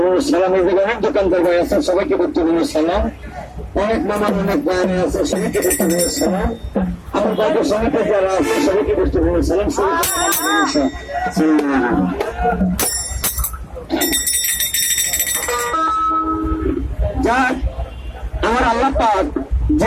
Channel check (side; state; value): both; identical; correlation 1.00